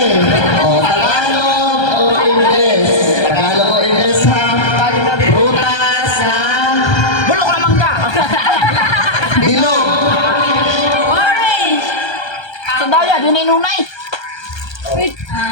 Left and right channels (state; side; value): late; right; 1.3 ms